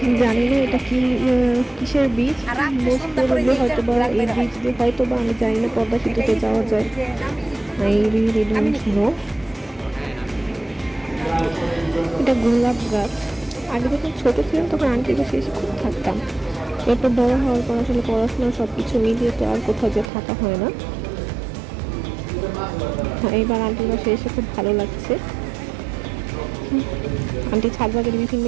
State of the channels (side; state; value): left; drops out; at 20.1 s